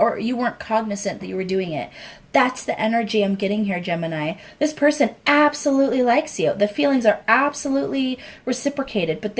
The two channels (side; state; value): both; identical; correlation 1.00